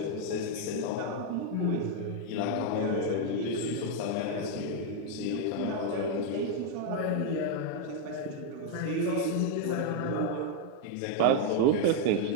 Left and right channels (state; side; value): different; both; correlation 0.00